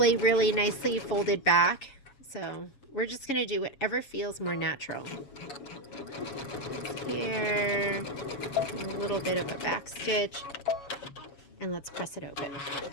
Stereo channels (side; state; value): right; late; 7.2 ms